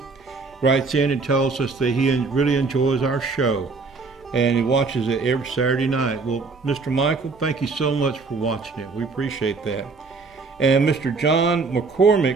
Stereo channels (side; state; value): left; quieter; 4.2 dB